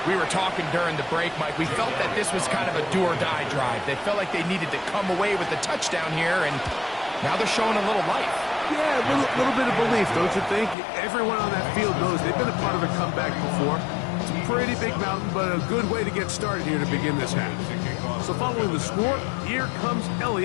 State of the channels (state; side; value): drops out; right; at 10.8 s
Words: We were talking during the break, Mike. We felt that this was kind of a do-or-die drive. They felt like they needed to come away with the touchdown here, and now they're showing a little life. Yeah, a little bit of belief, don't you think? Everyone on that field knows they've been a part of a comeback before. It's a pretty big mountain, but a good way to get started here to begin this half. So following the score, here comes